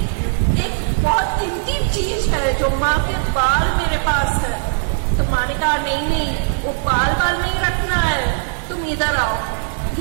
एक बहुत कीमती चीज है जो माँ के बाल मेरे पास है। तो माँ ने कहा नहीं नहीं वो बाल नहीं रखना है, तुम इधर आओ,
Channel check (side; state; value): left; silent; 55 dB below the other